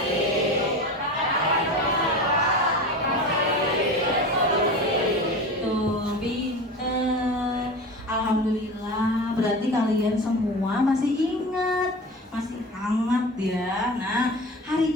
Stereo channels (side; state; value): both; normal; correlation 0.31